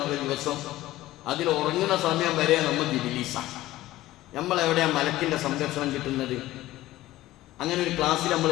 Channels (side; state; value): right; quieter; 16.1 dB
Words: ദിവസം. അതിൽ ഉറങ്ങുന്ന സമയം വരെ നമുക്ക് ഇബിലീസാണ്. നമ്മളെവിടെയാണ് മലക്കിൻ്റെ സംരക്ഷണം കിട്ടുന്നത്? അങ്ങനെ ഒരു ക്ലാസ്സിൽ നമ്മൾ